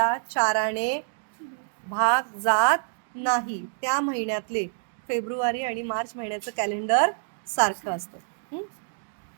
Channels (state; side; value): silent; left; digital silence